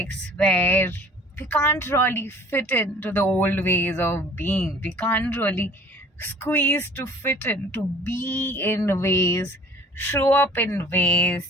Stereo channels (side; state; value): both; normal; correlation 0.49